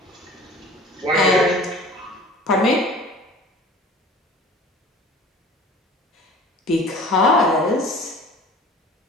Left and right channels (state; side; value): normal; both; correlation 0.44